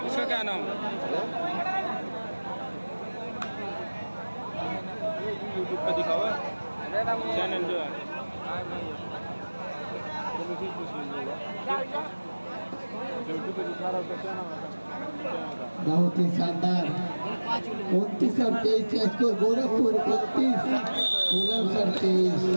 इसका क्या नाम यूट्यूब पे दिखा हुआ चैनल जो है यूट्यूब पे दिखा रहा है क्या नाम है बहुत ही शानदार 29 और 23 स्कोर। गोरखपुर 29 बुलंदशहर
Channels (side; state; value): both; inverted; correlation -1.00